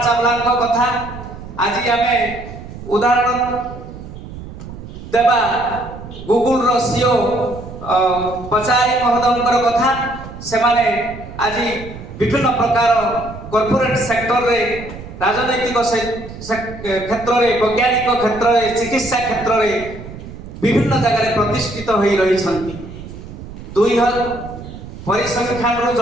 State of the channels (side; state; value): right; noise; rumble, 13 dB below the sound